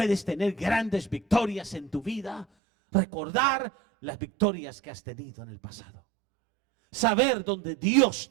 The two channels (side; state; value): left; drops out; at 2.5 s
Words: tener grandes victorias en tu vida? Recordar las victorias que has tenido en el pasado. Saber dónde Dios